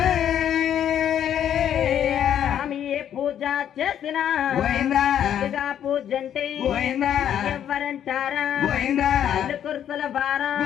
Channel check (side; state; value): right; quieter; 9.9 dB